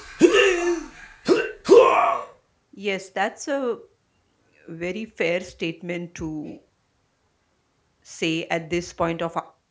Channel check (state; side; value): identical; both; correlation 1.00